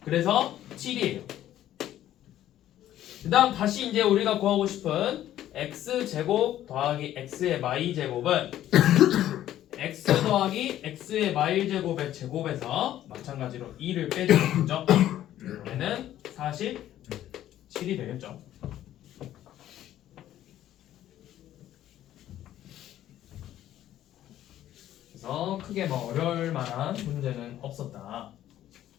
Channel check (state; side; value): quieter; right; 12.5 dB